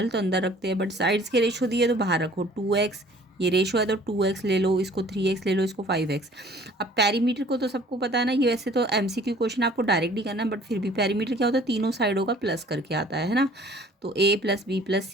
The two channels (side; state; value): both; normal; correlation 0.53